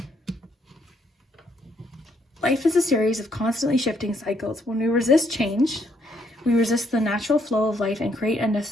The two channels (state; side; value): normal; both; correlation 0.71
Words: Life is a series of constantly shifting cycles. When we resist change, we resist the natural flow of life and create